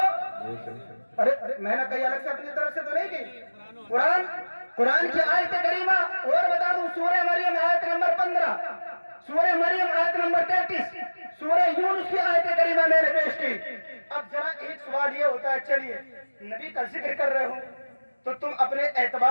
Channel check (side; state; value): both; inverted; correlation -1.00